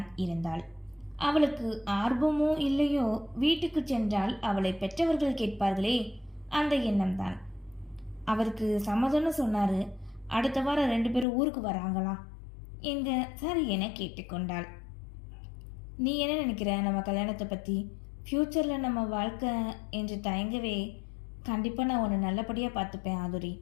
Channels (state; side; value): drops out; right; at 11.2 s